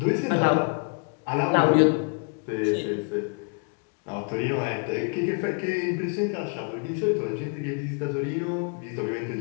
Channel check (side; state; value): right; quieter; 39.1 dB